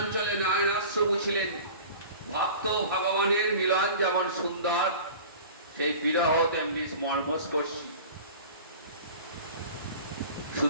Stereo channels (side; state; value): both; inverted; correlation -0.40